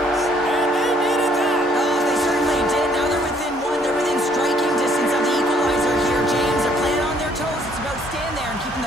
And they needed that. Oh, they certainly did. Now they're within 1. They're within striking distance of the equalizer here, James. They're playing on their toes. It's about staying there and keeping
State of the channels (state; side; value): normal; both; correlation 0.64